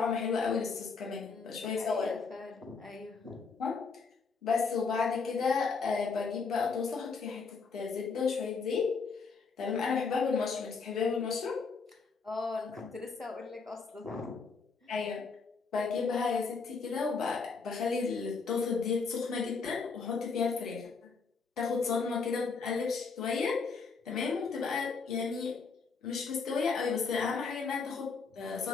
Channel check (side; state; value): right; quieter; 4.9 dB